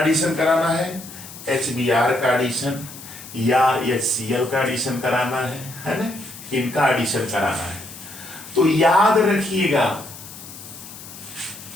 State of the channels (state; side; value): noise; left; hiss, 15 dB below the sound